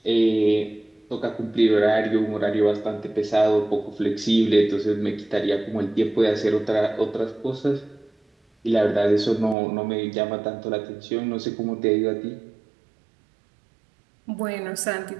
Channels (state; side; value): drops out; left; at 9.6 s